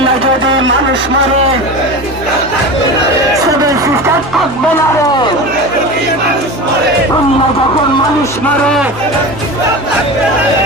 যদি মানুষ মারে সিভিল সিস্টেম থাকবে না রে। অন্য যখন মানুষ মারে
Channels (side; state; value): both; normal; correlation 0.29